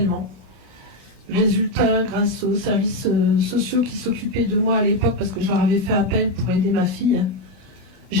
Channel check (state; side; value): late; left; 2.5 ms